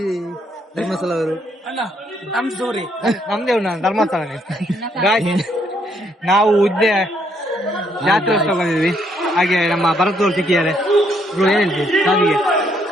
ಧರ್ಮಸ್ಥಳ ಅವರು ನಮ್ದೇ ಧರ್ಮಸ್ಥಳ ನಾವು ಉದ್ದೆ ಜಾತ್ರೋತ್ಸವ ಬಂದಿದ್ವಿ ಹಾಗೆ ನಮ್ಮ ಭರತವ್ರು ಸಿಕ್ಕಿದ್ದಾರೆ ಏನ್ ಹೇಳ್ತೀವಿ ಸಾವಿಗೆ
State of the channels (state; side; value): normal; both; correlation 0.71